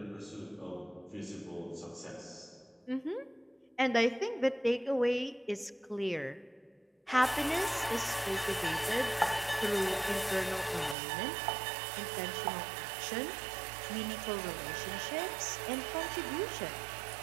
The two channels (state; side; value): drops out; left; at 11.0 s